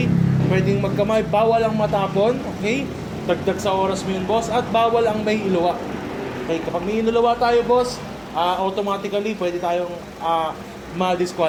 Pwedeng magkamay. Bawal ang matapon, okay? Dagdag sa oras mo yun, boss. At bawal ang may iluwa. Okay, kapag may iluwa tayo, boss, automatically, pwede tayong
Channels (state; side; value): identical; both; correlation 1.00